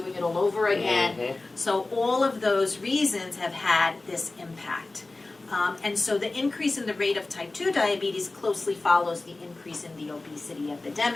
it all over again. So all of those reasons have had this impact. And so the increase in the rate of type 2 diabetes closely follows the increase in the obesity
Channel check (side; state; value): right; quieter; 3.2 dB